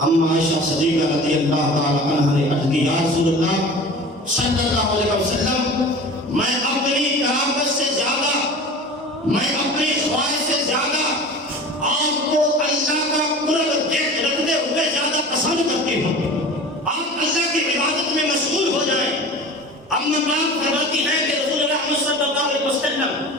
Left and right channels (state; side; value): normal; both; correlation 0.38